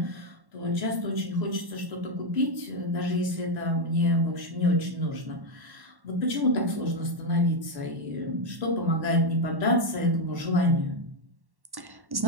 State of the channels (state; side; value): late; left; 1.1 ms